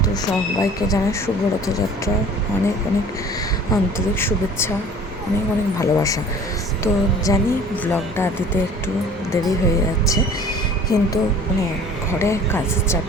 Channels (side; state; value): both; normal; correlation 0.47